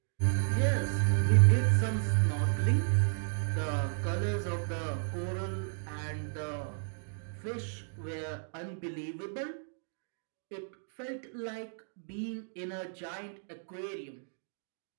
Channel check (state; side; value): silent; left; digital silence